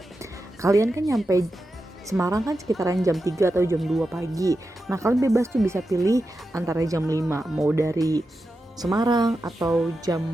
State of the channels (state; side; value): normal; both; correlation 0.90